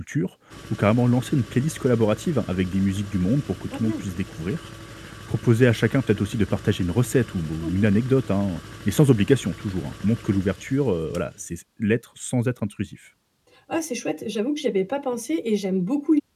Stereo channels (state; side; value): identical; both; correlation 1.00